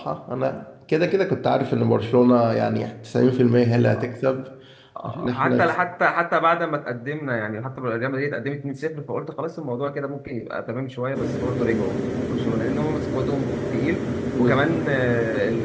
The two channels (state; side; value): identical; both; correlation 1.00